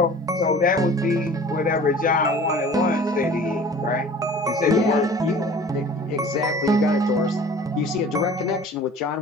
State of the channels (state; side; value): normal; both; correlation 0.45